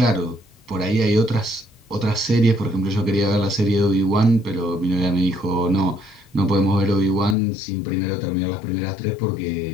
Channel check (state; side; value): drops out; right; at 7.4 s